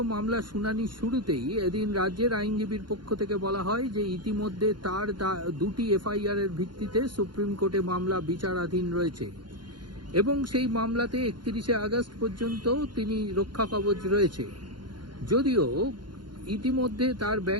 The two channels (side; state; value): left; late; 0.71 ms